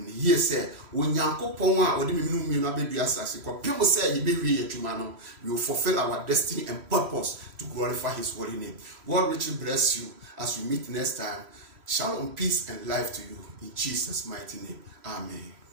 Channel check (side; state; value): left; late; 3.1 ms